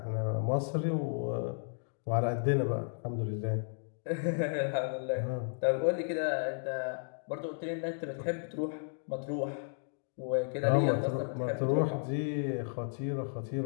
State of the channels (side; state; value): right; silent; digital silence